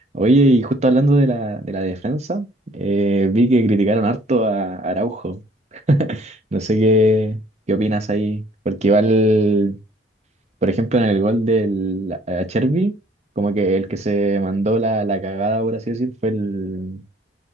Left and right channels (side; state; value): both; normal; correlation 0.59